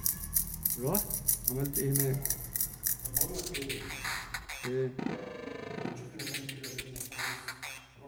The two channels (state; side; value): identical; both; correlation 1.00